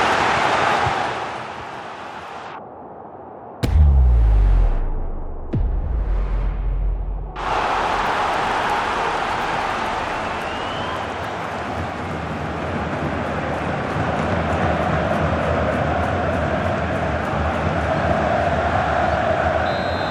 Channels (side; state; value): both; identical; correlation 1.00